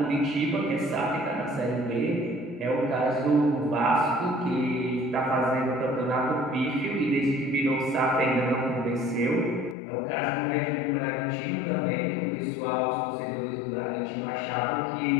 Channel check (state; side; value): drops out; right; at 9.8 s